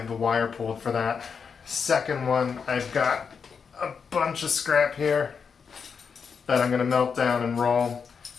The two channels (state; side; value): quieter; right; 6.1 dB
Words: the wire pulled for that. Second one, I've got a bunch of scrap here that I'm going to melt down and roll.